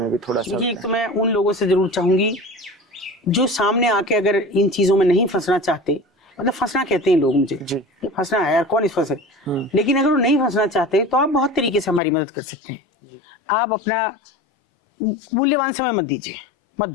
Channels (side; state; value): right; drops out; at 12.0 s